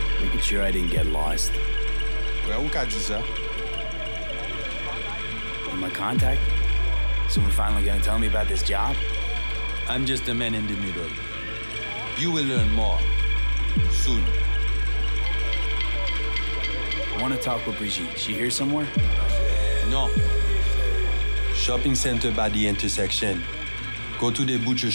Making sure I didn't get lost. Well, who got you, sir? My contact? Someone finally gonna tell me about this job? I'm just a man in the middle. You will learn more soon. I want to talk with Brigitte. She here somewhere? No. Shopping center by the intersection. Go to the butcher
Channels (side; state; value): both; inverted; correlation -1.00